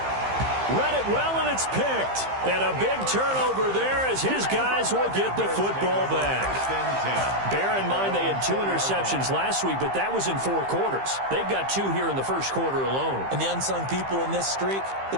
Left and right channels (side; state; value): left; late; 15 ms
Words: Read it well, and it's picked. And a big turnover there as his guys will get the football back. Bear in mind they had 2 interceptions last week, but that was in 4 quarters. They've got 2 here in the first quarter alone. And the unsung people in this streak, the